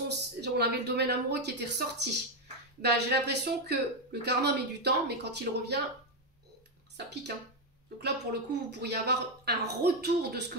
on avait le domaine amoureux qui était ressorti, ben, j'ai l'impression que le karma met du temps, mais quand il revient, ça pique. Hein. Donc là, pour le coup, vous pourriez avoir un retour de ce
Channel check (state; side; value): normal; both; correlation 0.05